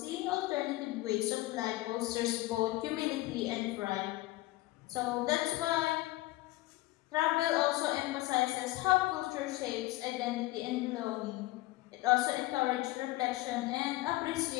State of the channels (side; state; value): right; quieter; 18.5 dB